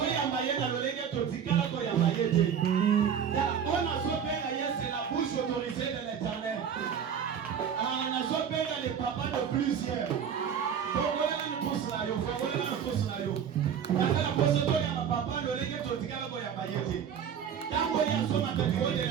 ye na lolenge totikala koyamba ye te. On a zobenga ye, c'est la bouche autorisée de l'Éternel. On a zobenga les papas de plusieurs. Fongolela ni pousse na yo, fongolela ni pousse na yo. Nazala posa toyamba papa lolenge totikala koyamba ye te. Tango ya soma tatiko de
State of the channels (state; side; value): quieter; left; 8.0 dB